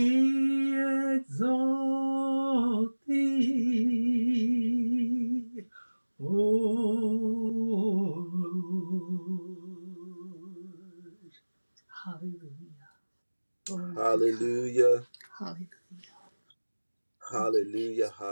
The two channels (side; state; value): both; inverted; correlation -1.00